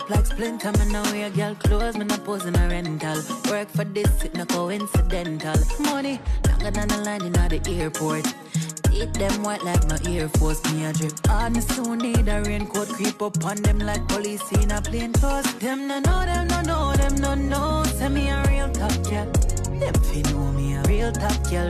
like splinter. Me no wear girl clothes, me no pose in a rental. Work for this, it no coincidental. Money longer than the line in the airport. Eat them white like my Air Force. Me a drip hard, me soon need a raincoat. Creep up on them like police in a plain clothes. Them no know, them no know, them no know. Say me a real top girl. Them fi know me a real top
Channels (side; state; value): both; identical; correlation 1.00